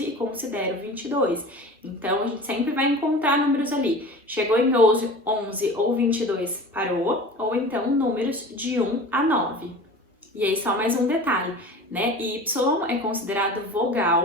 e considera o 22. Então, a gente sempre vai encontrar números ali. Chegou em 11 ou 22, parou, ou então números de 1 a 9. E aí, só mais um detalhe, né? Y é considerado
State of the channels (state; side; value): normal; both; correlation 0.38